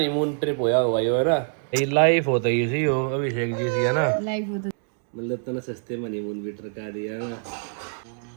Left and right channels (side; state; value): left; silent; digital silence